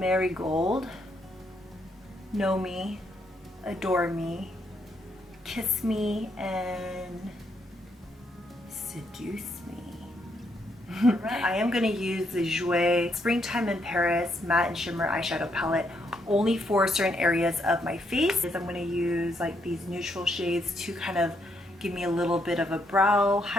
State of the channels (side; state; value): both; normal; correlation 0.75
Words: Know Me, Adore Me, Kiss Me, and Seduce Me. I am going to use the Jouer Springtime in Paris Matte and Shimmer Eyeshadow Palette only for certain areas of my face. I'm going to use like these neutral shades to kind of give me a little bit of a brow